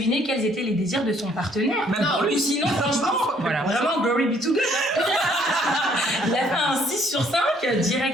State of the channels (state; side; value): normal; both; correlation 0.64